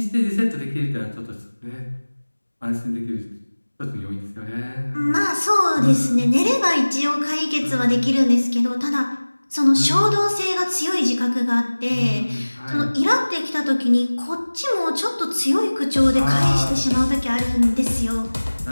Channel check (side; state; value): both; inverted; correlation -1.00